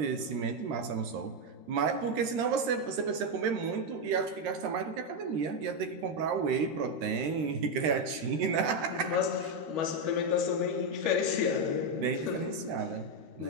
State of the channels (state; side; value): late; left; 13 ms